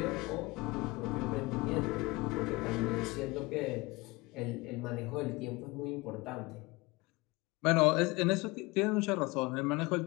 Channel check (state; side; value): quieter; right; 23.4 dB